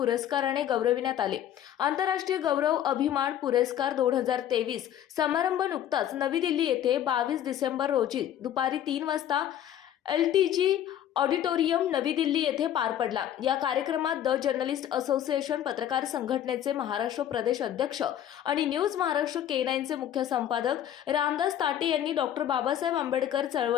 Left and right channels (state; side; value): quieter; right; 10.8 dB